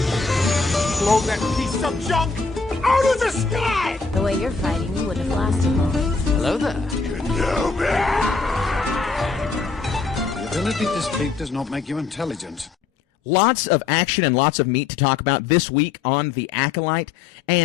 Blow that piece of junk out of the sky! The way you're fighting, you wouldn't have lasted long. Hello there. The ability to speak does not make you intelligent. Lots of action and lots of meat to talk about this week on The Acolyte.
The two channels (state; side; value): quieter; right; 4.7 dB